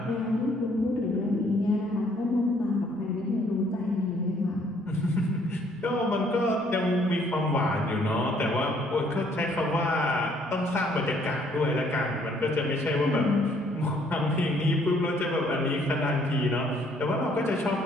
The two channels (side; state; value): right; noise; rumble, 30 dB below the sound